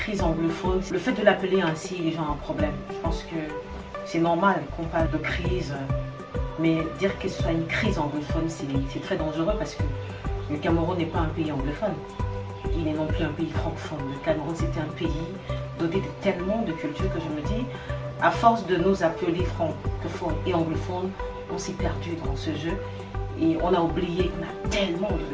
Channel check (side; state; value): both; identical; correlation 1.00